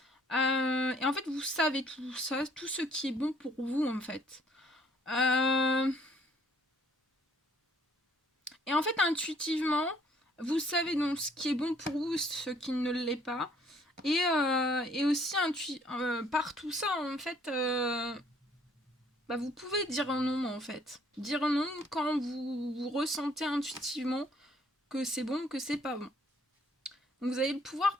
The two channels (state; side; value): normal; both; correlation 0.62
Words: Et en fait, vous savez tout ça, tout ce qui est bon pour vous, en fait. Et en fait, intuitivement, vous savez donc ce qui est bon pour vous, ce qui ne l'est pas. Et aussi, par tout ça, en fait... bah, vous pouvez dire un non en fait. Dire non quand vous ressentez intuitivement que c'est bon, que c'est pas bon. Donc vous avez le pouvoir